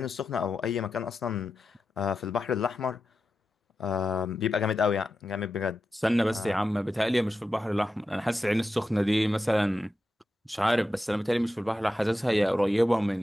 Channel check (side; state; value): both; normal; correlation 0.90